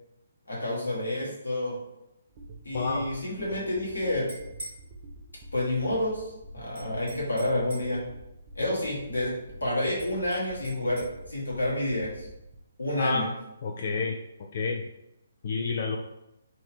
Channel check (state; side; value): inverted; both; correlation -0.75